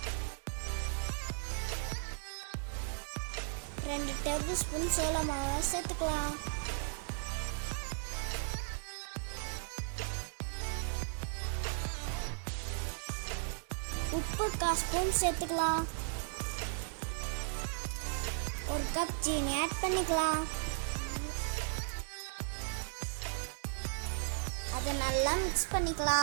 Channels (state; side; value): silent; left; 53 dB below the other